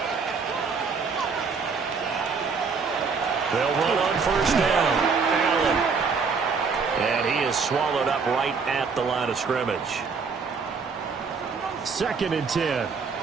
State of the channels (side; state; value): left; quieter; 5.2 dB